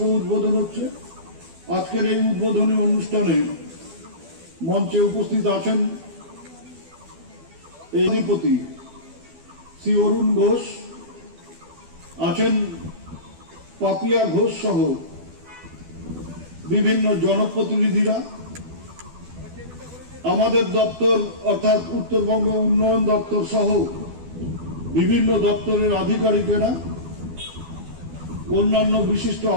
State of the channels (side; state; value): left; late; 12 ms